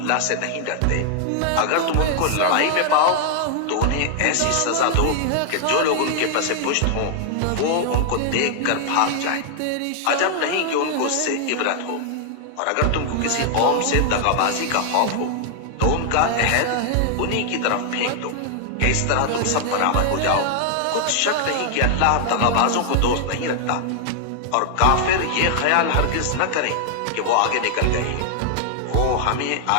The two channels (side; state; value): both; different; correlation 0.00